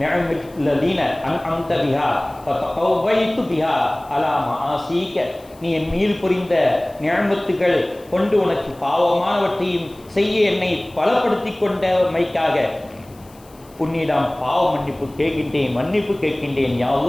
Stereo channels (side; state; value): left; noise; hiss, 27 dB below the sound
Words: நிஅமில்லதீன அன்அம்த பிஹா ஃபதகவைது பிஹா அலா மஆசீக. நீ என் மீது புரிந்த நிஅமத்துகள் கொண்டு உனக்கு பாவமானவற்றையும் செய்ய என்னை பலப்படுத்தி கொண்டமைக்காக உன்னிடம் பாவ மன்னிப்பு கேட்கின்றேன், மன்னிப்பு கேட்கின்றேன். யா